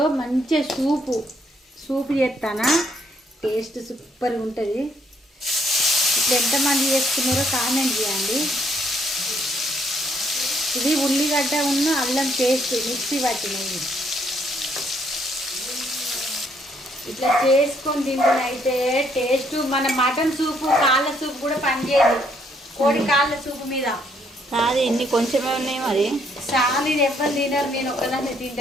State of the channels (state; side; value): normal; both; correlation 0.69